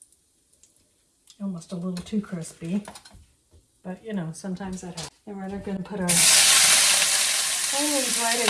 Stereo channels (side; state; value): both; identical; correlation 1.00